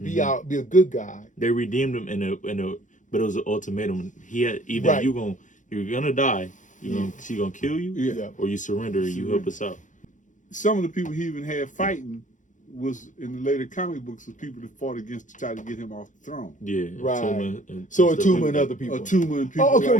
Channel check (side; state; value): right; late; 0.37 ms